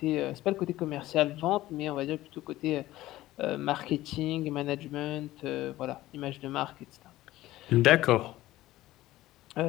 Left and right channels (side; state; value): right; quieter; 16.1 dB